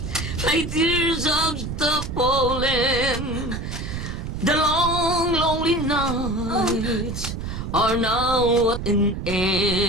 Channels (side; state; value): right; noise; rumble, 5 dB below the sound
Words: My tears of the fallen. The long, lonely nights are now at an